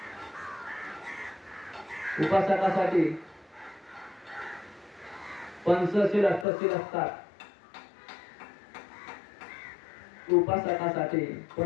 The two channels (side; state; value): right; drops out; at 6.5 s